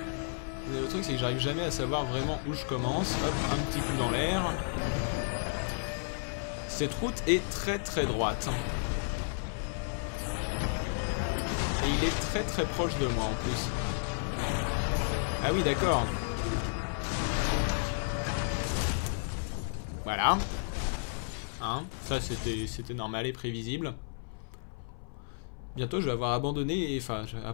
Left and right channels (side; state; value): right; silent; 56 dB below the other